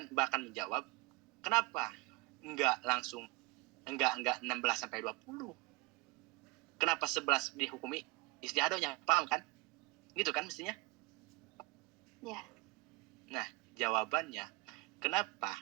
bahkan menjawab kenapa enggak 16 sampai 20? Kenapa 11 dihukumi istiadohnya? Paham kan? Gitu kan mestinya? Ya. Nah, jawabannya kenapa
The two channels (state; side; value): quieter; left; 22.4 dB